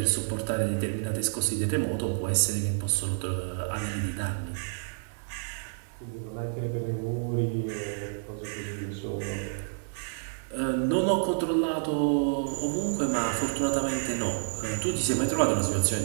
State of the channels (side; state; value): left; silent; digital silence